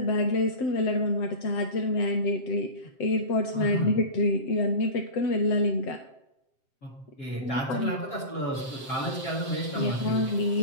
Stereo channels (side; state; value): right; late; 7.6 ms